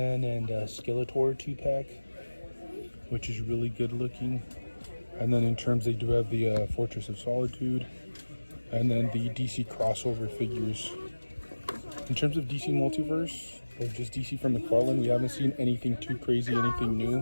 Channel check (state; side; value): inverted; both; correlation -1.00